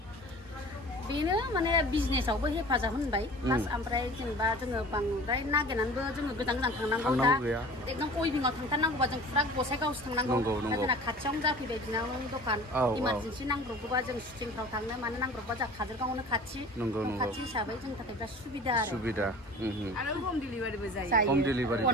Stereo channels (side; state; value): both; normal; correlation 0.42